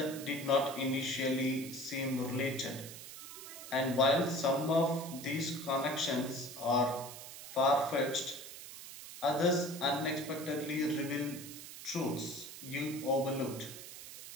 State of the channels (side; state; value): right; noise; hiss, 12 dB below the sound